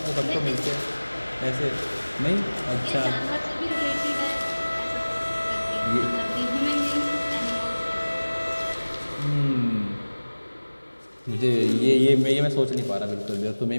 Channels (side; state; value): both; inverted; correlation -1.00